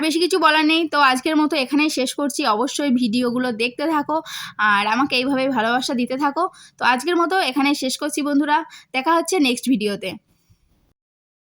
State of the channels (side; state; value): both; identical; correlation 1.00